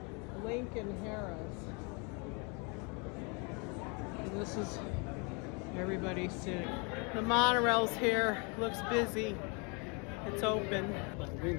Lincoln Harris. And this is everybody sitting. The monorail's here. Looks busy. It's open.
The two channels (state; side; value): quieter; right; 32.8 dB